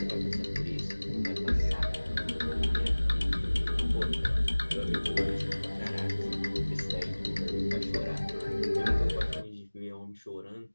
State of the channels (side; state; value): both; inverted; correlation -1.00